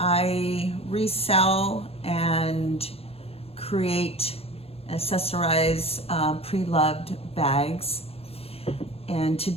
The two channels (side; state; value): right; late; 0.29 ms